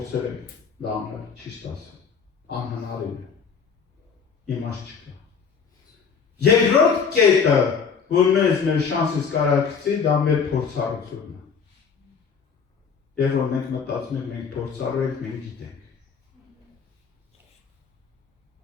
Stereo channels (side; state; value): right; quieter; 6.1 dB